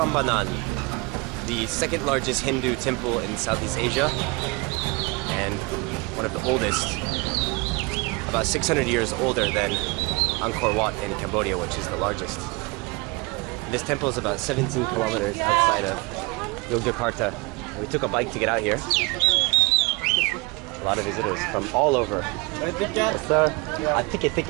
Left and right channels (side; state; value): left; quieter; 26.7 dB